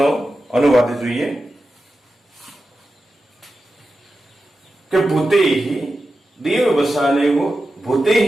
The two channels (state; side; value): normal; both; correlation 0.92